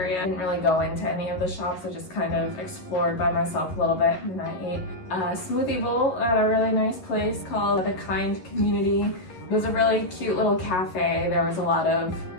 I didn't really go into any of the shops. I just kind of explored by myself a little bit, and I ate a smoothie bowl at a really nice place called the Kynd Community. It was a really cute little cafe. There was a lot of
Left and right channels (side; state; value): right; late; 11 ms